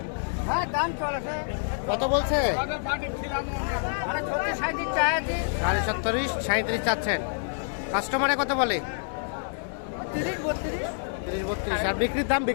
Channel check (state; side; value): silent; right; 60 dB below the other